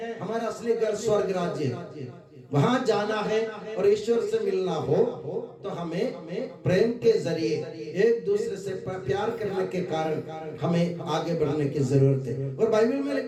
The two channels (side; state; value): both; identical; correlation 1.00